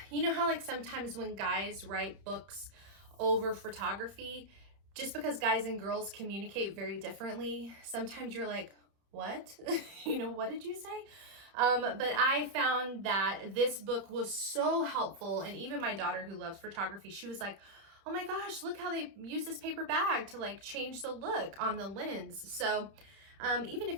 you know how like sometimes when guys write books over photography, just because guys and girls communicate very differently, sometimes you're like, what? You know, what did you say? But I found that this book was so helpful, and even my daughter who loves photography, she was like, oh my gosh, look how they use this paper bag to like change the look on the lens. So even if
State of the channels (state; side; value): late; left; 31 ms